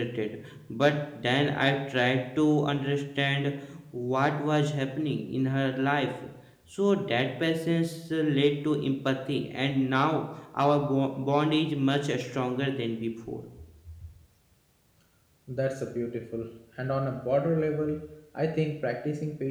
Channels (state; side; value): identical; both; correlation 1.00